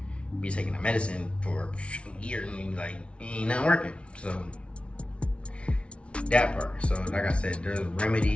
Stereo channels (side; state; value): right; late; 0.060 ms